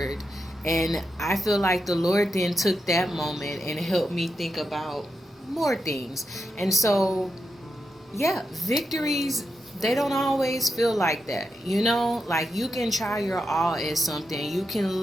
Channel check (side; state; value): both; normal; correlation 0.87